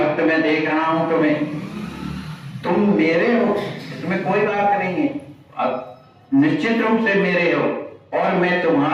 में देख रहा हूं तुम्हें, तुम मेरे हो, इसमें कोई बात नहीं है, अब निश्चित रूप से मेरे हो। और मैं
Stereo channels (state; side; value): identical; both; correlation 1.00